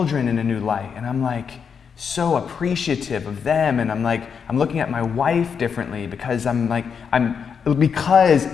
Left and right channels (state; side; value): quieter; right; 6.6 dB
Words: in a new light, and I'm like so appreciative of them. And I'm looking at my wife differently because because